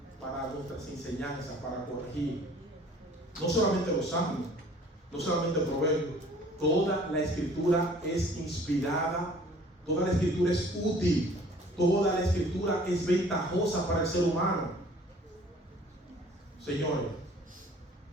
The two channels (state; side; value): normal; both; correlation 0.52